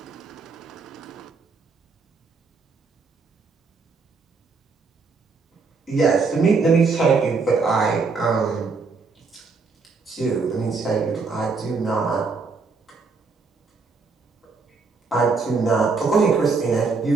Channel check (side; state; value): left; quieter; 4.5 dB